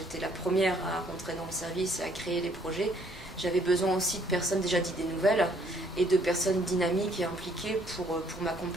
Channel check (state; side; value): normal; both; correlation 0.65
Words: la première à rentrer dans le service et à créer les projets, j'avais besoin aussi de personnes déjà d'idées nouvelles et de personnes dynamiques et impliquées pour